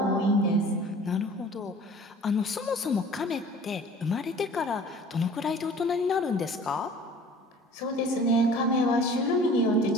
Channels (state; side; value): normal; both; correlation 0.46